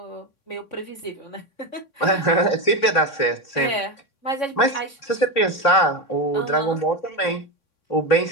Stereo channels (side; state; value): right; late; 3.6 ms